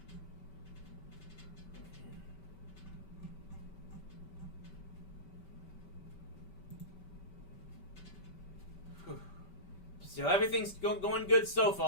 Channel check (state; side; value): late; right; 5.2 ms